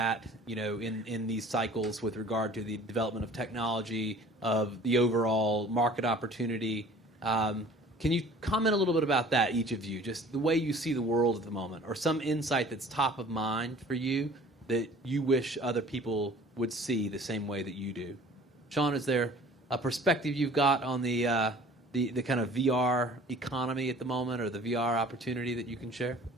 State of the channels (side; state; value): both; normal; correlation 0.49